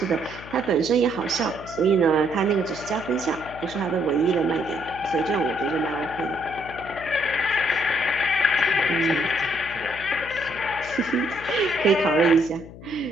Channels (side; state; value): left; noise; hum, 16 dB below the sound